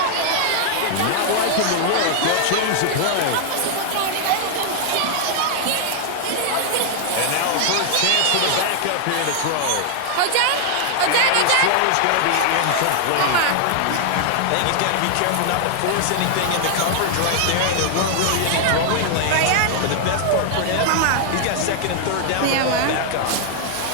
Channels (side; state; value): both; different; correlation 0.00